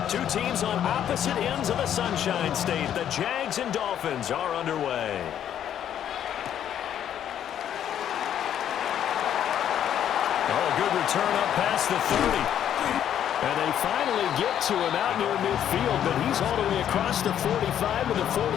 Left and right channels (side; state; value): right; quieter; 10.0 dB